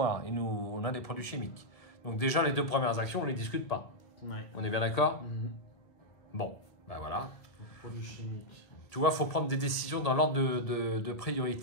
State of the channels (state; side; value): late; right; 1.8 ms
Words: et nous, on a des produits chimiques. Donc déjà, les 2 premières actions, on ne les discute pas. Ouais. On est bien d'accord? Mhm. Bon, ben voilà. Produits chimiques. Tu vois, il faut prendre des décisions dans l'ordre de